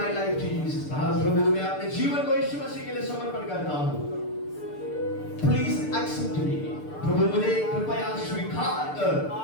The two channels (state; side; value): late; right; 6.8 ms